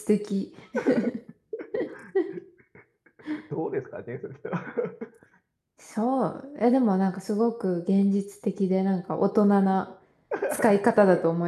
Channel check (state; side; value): identical; both; correlation 1.00